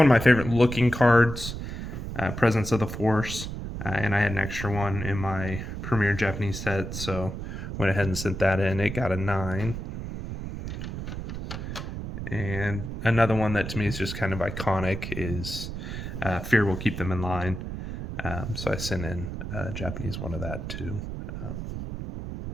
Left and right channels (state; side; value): noise; right; rumble, 7 dB below the sound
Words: of my favorite looking cards, Presence of the Force. And I had an extra one in my Premier Japanese set, so went ahead and sent that in. It got a 9. And another one that to me is just kind of iconic is Fear Will Keep Them in Line. So I sent in a Japanese one of that too.